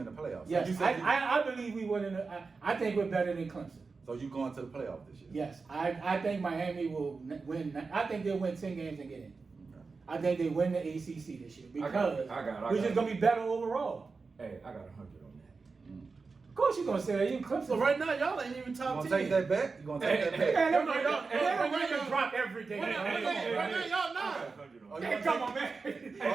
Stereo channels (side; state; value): left; quieter; 4.4 dB